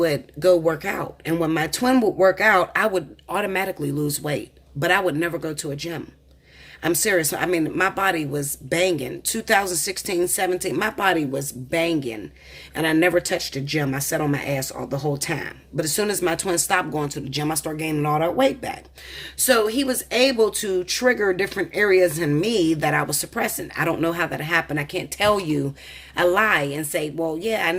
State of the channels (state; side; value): identical; both; correlation 1.00